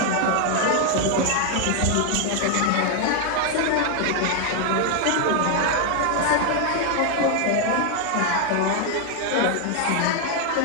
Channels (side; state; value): both; different; correlation 0.00